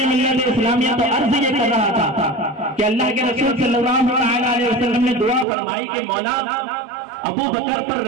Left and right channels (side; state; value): left; drops out; at 5.5 s